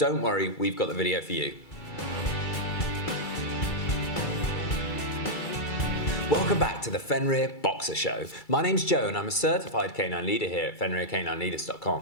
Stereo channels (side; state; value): right; late; 2.3 ms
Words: worry, we've got the video for you. Welcome back to the Fenrir Boxer Show. My name's Joe and I'm a certified canine leader here at